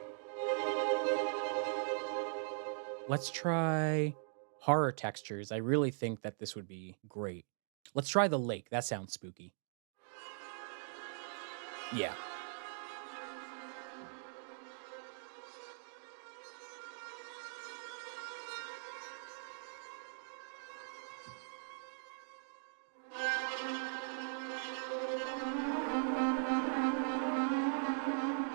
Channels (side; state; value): left; silent; digital silence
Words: Let's try horror textures. I really think that this would be great. Let's try the lake. That sounds spooky. Yeah.